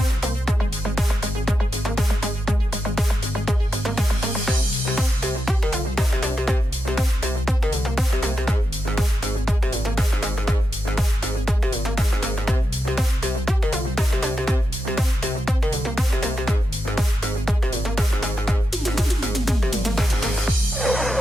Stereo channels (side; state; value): both; normal; correlation 0.87